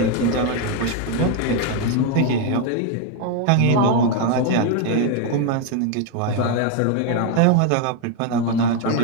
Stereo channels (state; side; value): different; both; correlation 0.01